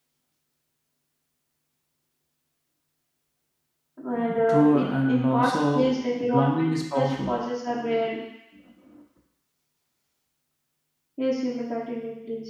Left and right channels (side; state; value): both; identical; correlation 1.00